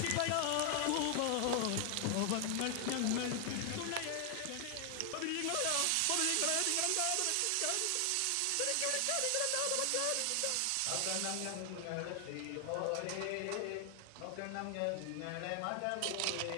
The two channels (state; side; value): different; both; correlation 0.00